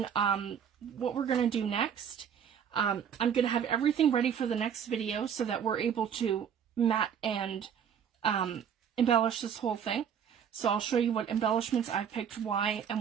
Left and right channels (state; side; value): quieter; left; 8.1 dB